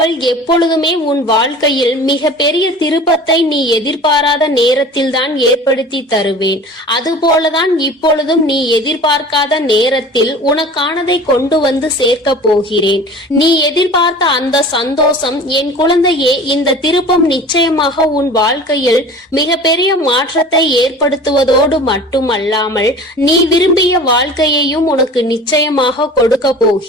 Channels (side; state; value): both; normal; correlation 0.41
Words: எப்பொழுதுமே உன் வாழ்க்கையில் மிக பெரிய திருப்பத்தை நீ எதிர்பாராத நேரத்தில் தான் ஏற்படுத்தி தருவேன். அதுபோலதான் இப்பொழுதும் நீ எதிர்பார்க்காத நேரத்தில் உனக்கானதை கொண்டு வந்து சேர்க்க போகிறேன். நீ எதிர்பார்த்த அந்த சந்தோஷம் என் குழந்தையே, இந்த திருப்பம் நிச்சயமாக உன் வாழ்க்கையில் மிக பெரிய மாற்றத்தை ஏற்படுத்துவதோடு மட்டுமல்லாமல் நீ விரும்பிய வாழ்க்கையையும் உனக்கு நிச்சயமாக கொடுக்க